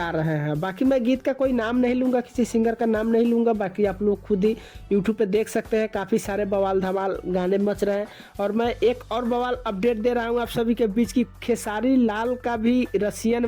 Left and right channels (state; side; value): identical; both; correlation 1.00